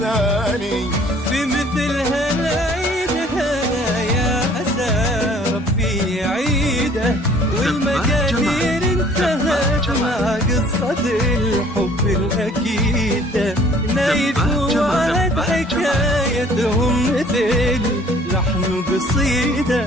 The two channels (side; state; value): both; normal; correlation 0.55